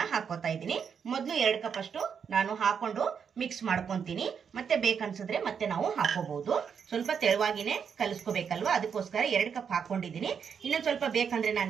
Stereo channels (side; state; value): left; quieter; 7.0 dB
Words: ಹಾಕೋತಾ ಇದ್ದೀನಿ. ಮೊದಲು 2 ಕಪ್ ಅಷ್ಟು ನಾನು ಹಾಕೊಂಡು ಮಿಕ್ಸ್ ಮಾಡ್ಕೊತೀನಿ. ಮತ್ತೆ ಬೇಕನ್ಸಿದ್ರೆ ಮತ್ತೆ ನಾವು ಹಾಕೋಬಹುದು. ಸ್ವಲ್ಪ ತೆಳುವಾಗಿನೇ ಕಲಿಸ್ಕೋಬೇಕಲ್ವಾ, ಅದಕ್ಕೋಸ್ಕರ 2 ಕಪ್ ಹಾಕೊಂಡಿದ್ದೀನಿ. ಇನ್ನೊಂದು ಸ್ವಲ್ಪ ಬೇಕಂದ್ರೆ ನಾನು